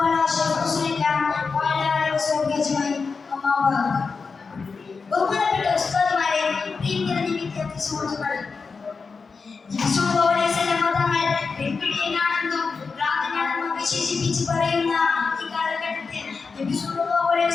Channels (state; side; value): quieter; right; 4.8 dB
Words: على أشرف رسول الله وعلى آله وصحبه أجمعين. أما بعد. ബഹുമാനപ്പെട്ട ഉസ്താദുമാരെ, പ്രിയങ്കരഞ്ഞ വിദ്യാർത്ഥി സുഹൃത്തുക്കളെ, തങ്ങൾ പെൺപിടിയനാണെന്നും ഭ്രാന്തനാണെന്നും വിശേഷിപ്പിച്ച് പറയുന്ന ഈ കാലഘട്ടത്തിൽ നബി സല്ലല്ലാഹു അലൈഹി